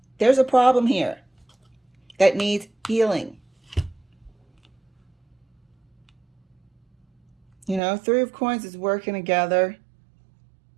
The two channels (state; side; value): drops out; left; at 7.8 s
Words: There's a problem here that needs healing. Three of Coins is working together.